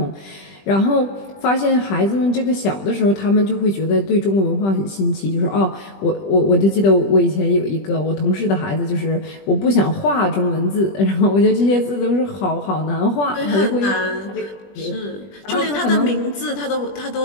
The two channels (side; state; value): right; late; 20 ms